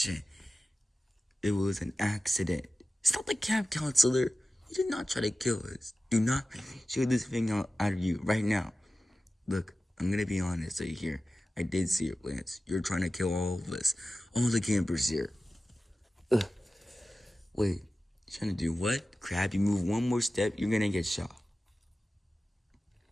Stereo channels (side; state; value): both; normal; correlation 0.95